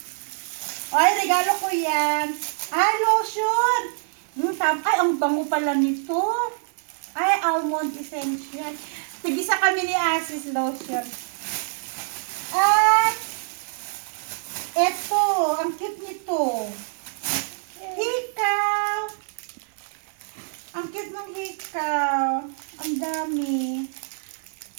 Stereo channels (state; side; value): silent; left; 60 dB below the other